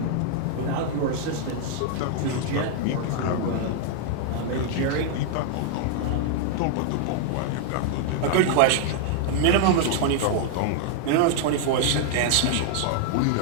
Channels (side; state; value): both; different; correlation -0.01